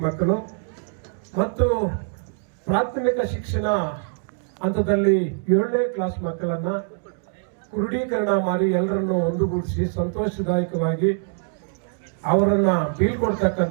ಮಕ್ಕಳು ಮತ್ತು ಪ್ರಾಥಮಿಕ ಶಿಕ್ಷಣ ಹಂತದಲ್ಲಿ 7ನೇ ಕ್ಲಾಸ್ ಮಕ್ಕಳನ್ನ ಕ್ರೋಢೀಕರಣ ಮಾಡಿ ಎಲ್ಲರನ್ನು ಒಂದುಗೂಡಿಸಿ ಸಂತೋಷದಾಯಕವಾಗಿ ಅವರನ್ನ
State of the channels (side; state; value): left; silent; digital silence